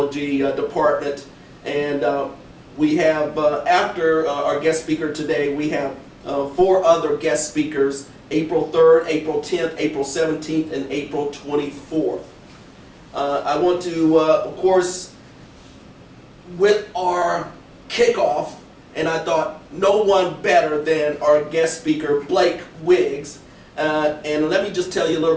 department. And we have, after our guest speaker today, we have 4 other guest speakers: April 3rd, April 10th, April 17th, and April 24th. I want to, of course, with our kickoff, and I thought no one better than our guest speaker, Blake Wiggs. And let me just tell you a little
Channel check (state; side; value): identical; both; correlation 1.00